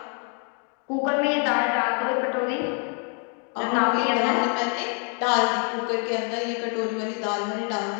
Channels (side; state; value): right; quieter; 39.9 dB